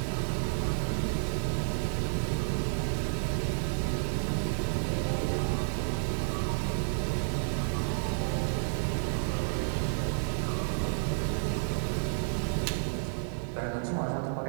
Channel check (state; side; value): silent; left; digital silence